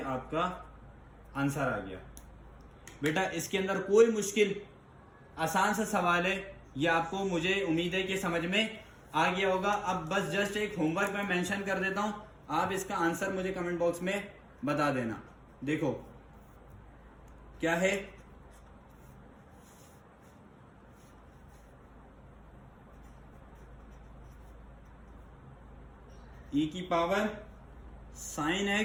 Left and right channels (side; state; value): both; identical; correlation 1.00